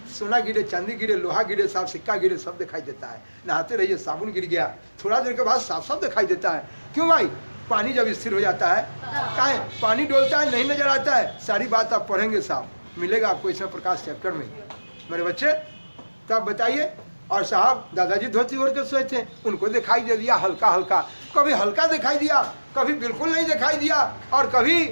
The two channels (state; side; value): inverted; both; correlation -1.00